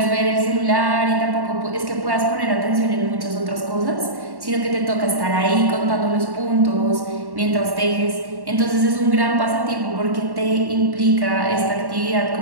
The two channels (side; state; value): left; late; 1.1 ms